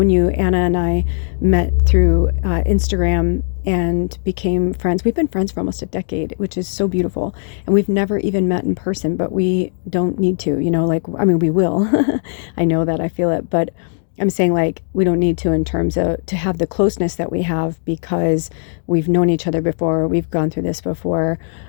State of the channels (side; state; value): right; silent; digital silence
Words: you. Anna and I met through Instagram and became friends. We've been friends for almost a decade, which is so beautiful. And we've never even met in person, but we don't need to, we will. I know that, I feel it, but I'm saying, like, we don't need to in terms of to have the closeness that we have because we've known each other before, we've gone through this before.